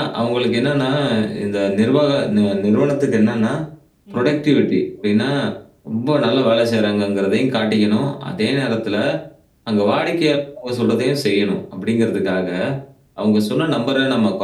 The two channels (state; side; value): identical; both; correlation 1.00